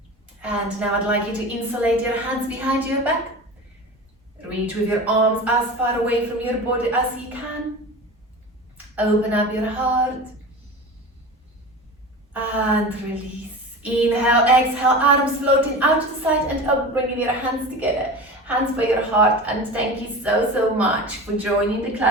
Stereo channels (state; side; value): normal; both; correlation 0.32